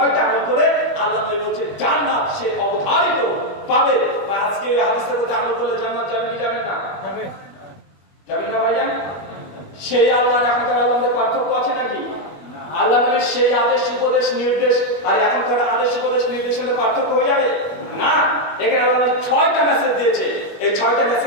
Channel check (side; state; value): right; late; 21 ms